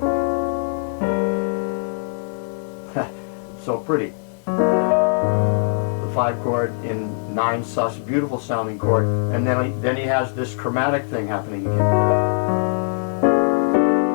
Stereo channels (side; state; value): right; silent; digital silence